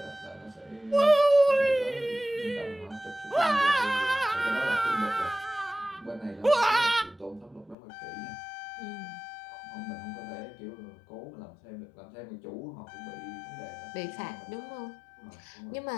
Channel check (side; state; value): right; drops out; at 7.8 s